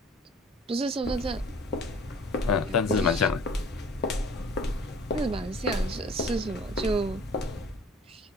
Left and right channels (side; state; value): both; normal; correlation 0.49